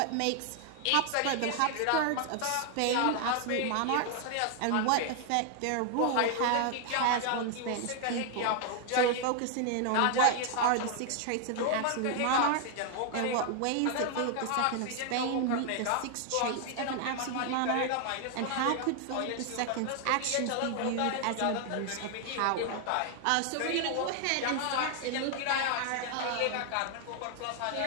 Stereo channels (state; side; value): different; both; correlation 0.00